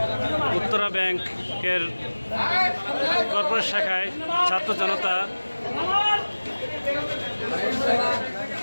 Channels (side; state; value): both; inverted; correlation -1.00